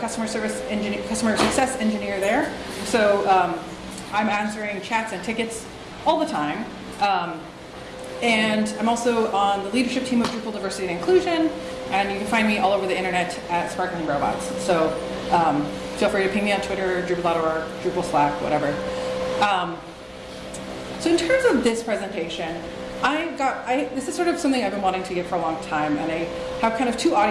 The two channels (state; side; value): identical; both; correlation 1.00